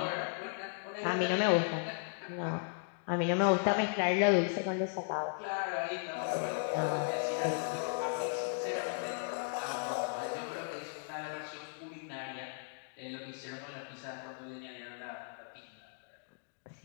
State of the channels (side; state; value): right; silent; digital silence